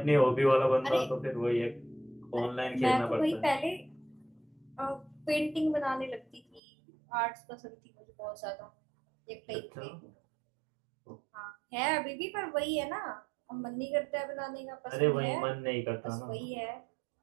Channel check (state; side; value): drops out; left; at 6.6 s